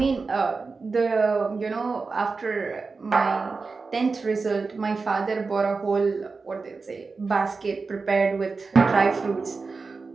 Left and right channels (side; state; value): left; quieter; 4.3 dB